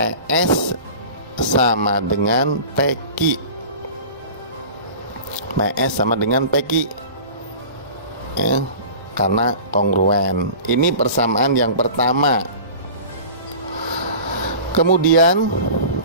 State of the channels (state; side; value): inverted; both; correlation -0.38